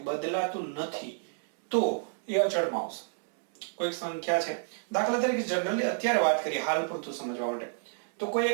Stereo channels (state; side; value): silent; left; digital silence